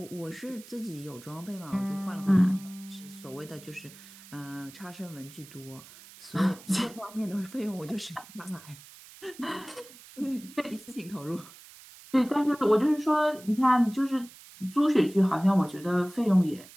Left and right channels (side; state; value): right; noise; hiss, 20 dB below the sound